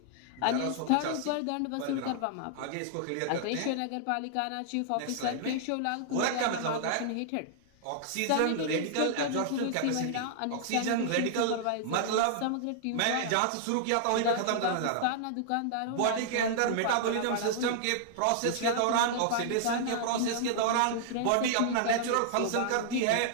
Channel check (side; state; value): both; different; correlation -0.01